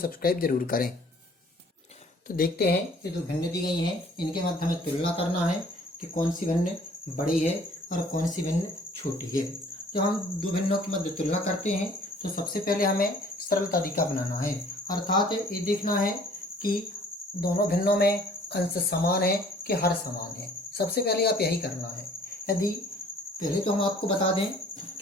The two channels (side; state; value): both; normal; correlation 0.54